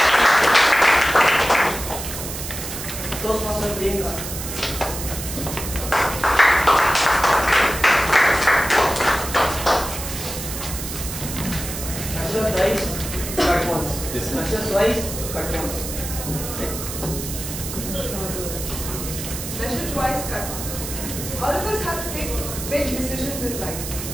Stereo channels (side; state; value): right; noise; hiss, 7 dB below the sound